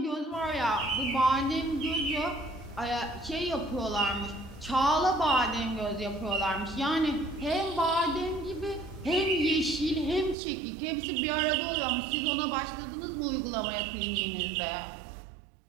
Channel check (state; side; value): drops out; left; at 10.4 s